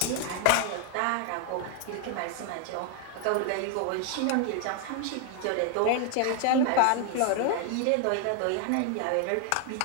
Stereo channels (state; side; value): different; both; correlation 0.00